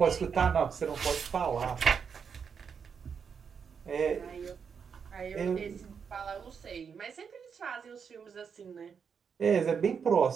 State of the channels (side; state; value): left; quieter; 6.5 dB